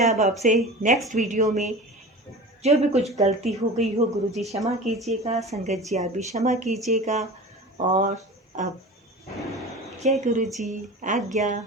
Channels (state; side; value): normal; both; correlation 0.35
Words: अब आपसे नेक्स्ट वीडियो में। जो भी कुछ गलती हो गई हो गुरुजी क्षमा कीजिएगा, संगत जी आप भी क्षमा कीजिएगा। और अब जय गुरुजी, आज्ञा।